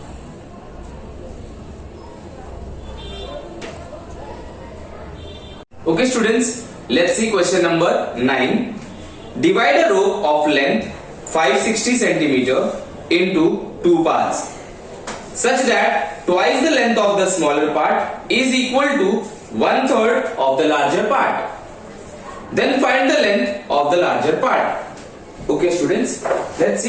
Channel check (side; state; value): both; identical; correlation 1.00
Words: Okay students, let's see question number 9. Divide a rope of length 560 cm into 2 parts such that twice the length of the smaller part is equal to 1/3 of the larger part. Then find the length of the larger part. Okay students, let's